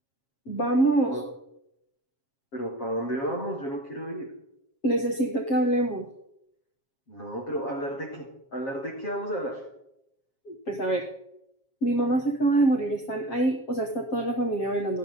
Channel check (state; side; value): late; right; 7.4 ms